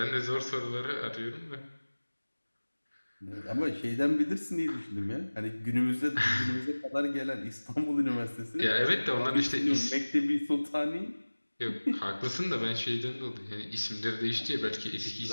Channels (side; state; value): both; inverted; correlation -1.00